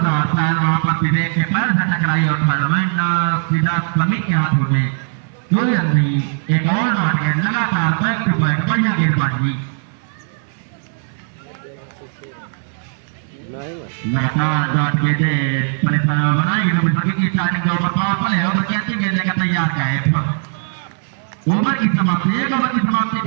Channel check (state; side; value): silent; left; 66 dB below the other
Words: शायद वहां पर विवेक के पैर से टकराई और टूर्नामेंट सीधा समीर के हाथों में कोई रन नहीं। एक और डॉट गेंद लगातार बैक टू बैक बढ़िया गेंदबाजी लगातार डॉट गेंद परेशान बनाई की स्टार्टिंग का ओवर पावर प्ले ओवर की अच्छी गेंद लेकर तैयार का है। ओवर की समाप्ति एक ओवर की समाप्ति